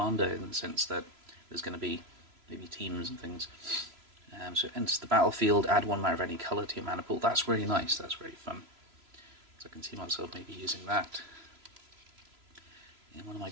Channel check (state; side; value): late; left; 3.0 ms